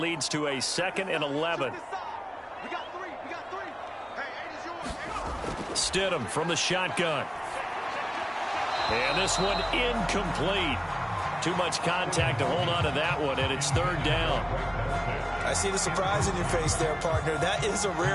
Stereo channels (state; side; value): identical; both; correlation 1.00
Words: to a 2nd and 11. We got three. Hey, 8 is yours. Stidham from the shotgun. And this one incomplete. Too much contact to hold on to that one, and it's 3rd down. I see the surprise in your face there, partner. That is a